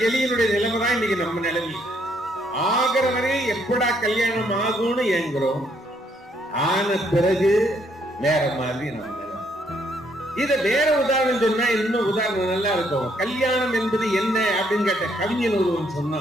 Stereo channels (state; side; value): normal; both; correlation 0.70